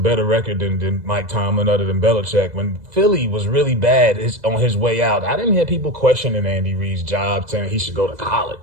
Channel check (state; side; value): late; left; 2.0 ms